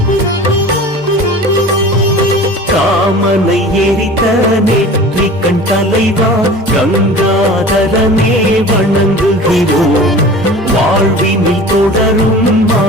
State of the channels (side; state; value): both; normal; correlation 0.39